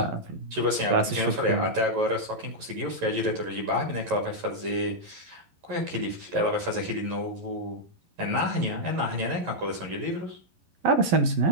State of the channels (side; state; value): left; late; 11 ms